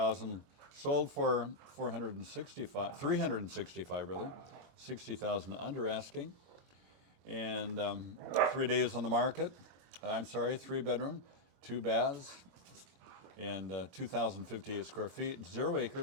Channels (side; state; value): left; late; 23 ms